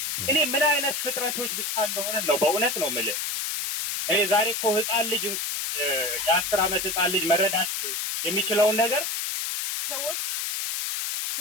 እኔ ምን አይነት ፍጥረቶች ብቻ እንደሆነ ነው በእውነት ነው የምልህ። እኔ ዛሬ እኮ ህፃን ልጅ የ10 ዓመት ህፃን ልጅ መረዳት የሚችለውን ነገር ሰዎች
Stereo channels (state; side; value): noise; left; hiss, 2 dB below the sound